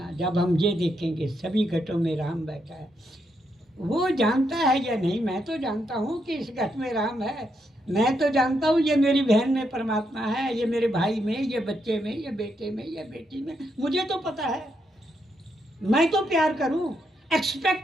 जब हम ये देखेंगे सभी घटों में राम बैठा है, वो जानता है या नहीं, मैं तो जानता हूँ कि इस घट में राम है, मैं तो जानता हूँ ये मेरी बहन में परमात्मा है, ये मेरे भाई में, ये बच्चे में, ये बेटे में, ये बेटी में, मुझे तो पता है। मैं तो प्यार करूँ,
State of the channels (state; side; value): normal; both; correlation 0.80